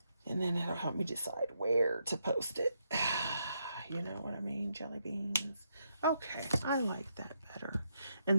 And then it'll help me decide where to post it. You know what I mean, jelly beans. Okay, I like that better.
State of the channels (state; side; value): inverted; both; correlation -0.79